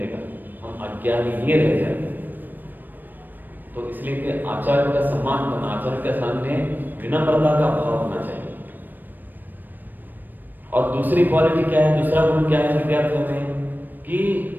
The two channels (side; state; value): left; late; 0.090 ms